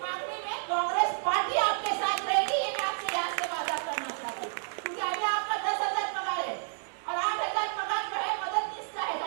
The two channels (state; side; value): silent; left; digital silence